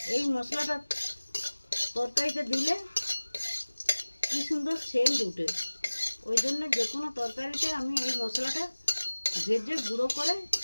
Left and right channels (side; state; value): both; inverted; correlation -1.00